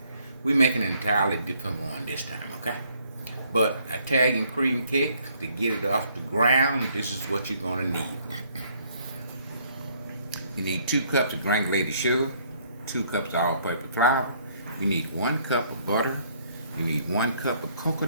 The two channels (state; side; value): inverted; both; correlation -0.65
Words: We making an entirely different one this time, okay? But Italian cream cake, to get it off the ground, this is what you're gonna need. You need 2 cups of granulated sugar, 2 cups of all-purpose flour. You need 1 cup of butter. You need 1 cup of